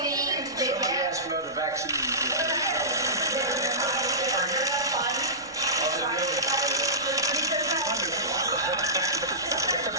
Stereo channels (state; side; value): noise; right; rumble, 29 dB below the sound